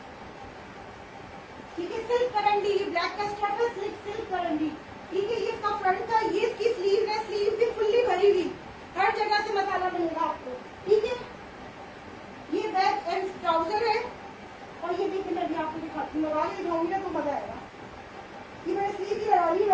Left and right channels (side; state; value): both; identical; correlation 1.00